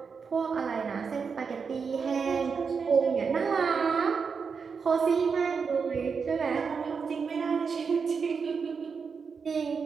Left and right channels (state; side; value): quieter; left; 5.7 dB